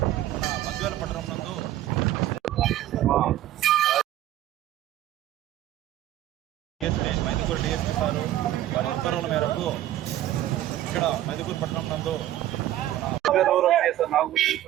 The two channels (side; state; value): left; quieter; 13.5 dB